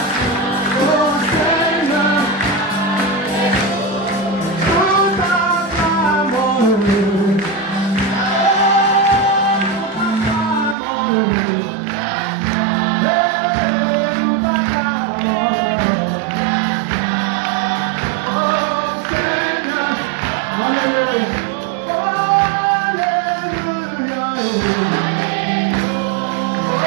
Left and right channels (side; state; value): left; drops out; at 10.8 s